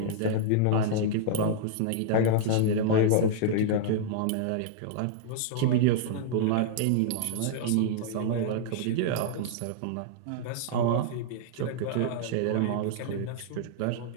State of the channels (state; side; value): different; both; correlation -0.01